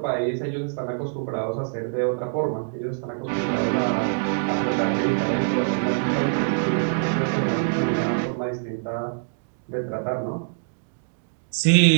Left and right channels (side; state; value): left; silent; digital silence